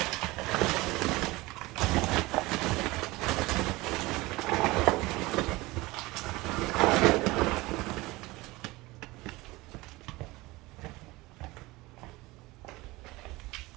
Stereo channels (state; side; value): quieter; left; 21.1 dB